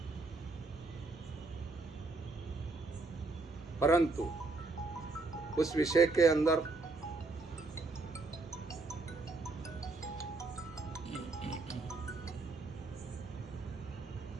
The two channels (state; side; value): quieter; left; 3.5 dB